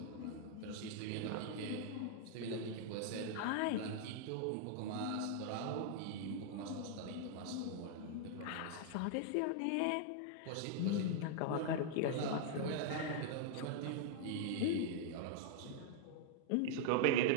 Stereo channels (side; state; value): both; different; correlation -0.01